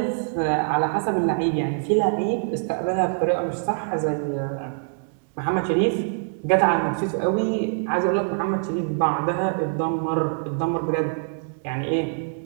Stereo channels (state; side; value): silent; left; 62 dB below the other